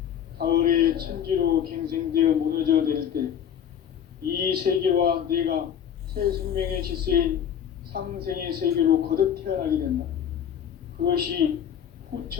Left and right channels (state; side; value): quieter; right; 9.0 dB